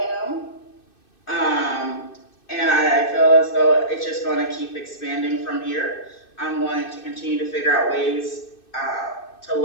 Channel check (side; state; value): right; late; 2.6 ms